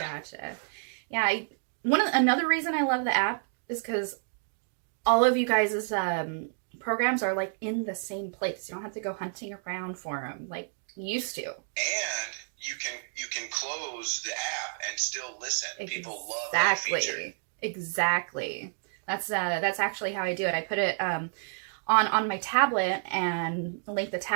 Gotcha. Yeah, another reason I love the app is because all of you guys' programs are like in the same place. You don't have to go hunting around for them like you used to. And you can close the app and still listen. People love that feature. Exactly. That's actually how I do it. I put it on my tablet and link the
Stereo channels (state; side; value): silent; left; digital silence